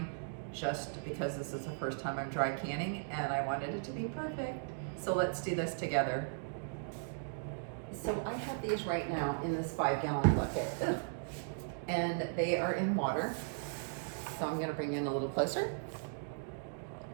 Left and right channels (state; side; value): silent; left; digital silence